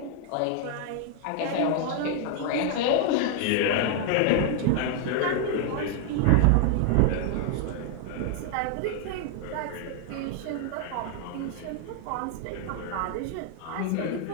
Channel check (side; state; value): both; different; correlation 0.00